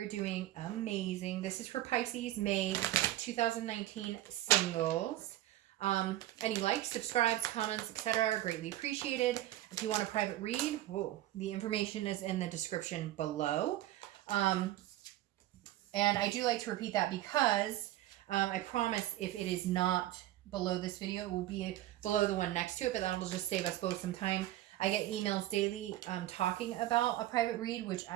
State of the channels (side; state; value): left; quieter; 14.7 dB